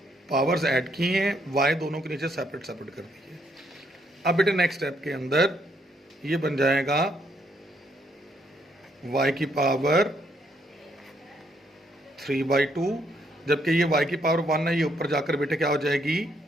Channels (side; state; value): both; normal; correlation 0.72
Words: पावर्स ऐड की हैं, वाई दोनों के नीचे सेपरेट सेपरेट कर दी है। अब बेटे नेक्स्ट स्टेप के अंदर ये बन जाएगा y की पावर 3/2, जबकि ये y की पावर 1 है, ये ऊपर जाकर बेटे क्या हो जाएगी